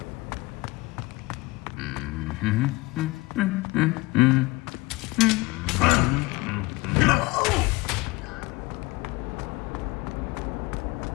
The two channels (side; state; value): right; quieter; 23.1 dB